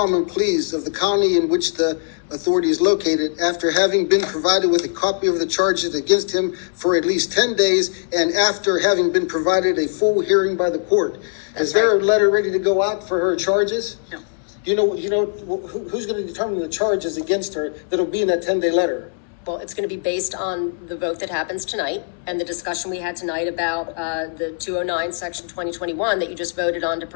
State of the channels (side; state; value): right; silent; 65 dB below the other